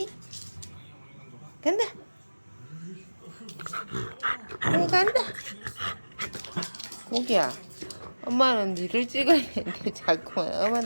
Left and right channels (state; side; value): inverted; both; correlation -1.00